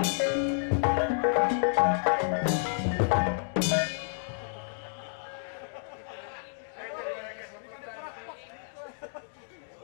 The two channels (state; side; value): silent; right; digital silence